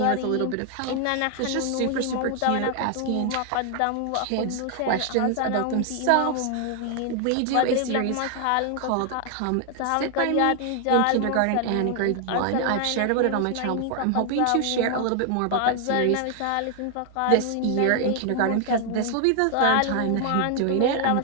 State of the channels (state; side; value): different; both; correlation 0.00